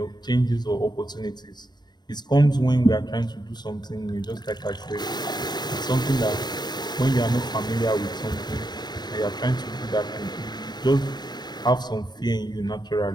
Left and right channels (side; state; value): right; late; 0.20 ms